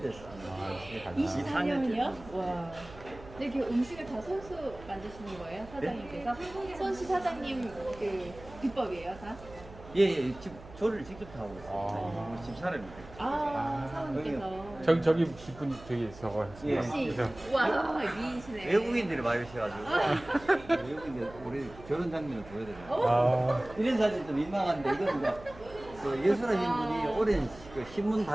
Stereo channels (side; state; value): right; noise; hum, 18 dB below the sound